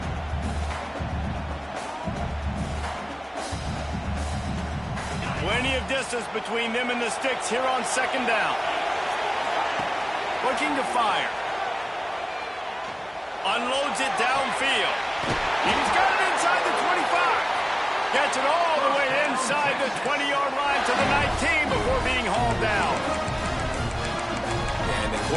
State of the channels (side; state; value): both; identical; correlation 1.00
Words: Plenty of distance between them and the Sticks here on second down. Looking to fire. Unloads it downfield. He's got it inside the 25. Gets it all the way inside the 20-yard line to the 19 before being hauled down. And the